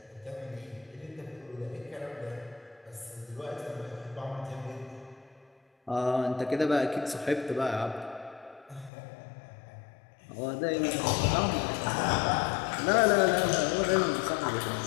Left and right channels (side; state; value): right; drops out; at 8.9 s